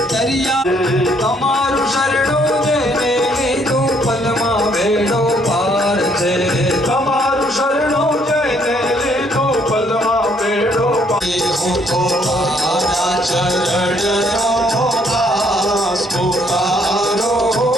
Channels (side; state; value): both; normal; correlation 0.67